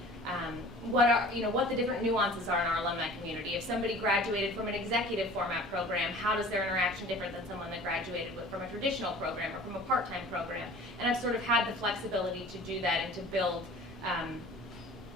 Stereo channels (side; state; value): both; normal; correlation 0.45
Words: what the different nuances are in our alumni community. If somebody graduated from an executive format program, how does their interaction different than someone that graduated from a traditional program or from a part-time program? And I've sort of had the flexibility to do that and to build up